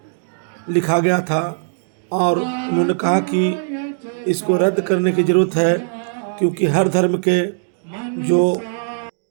लिखा गया था और उन्होंने कहा कि इसको रद्द करने की ज़रूरत है, क्योंकि हर धर्म के जो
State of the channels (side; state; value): left; silent; digital silence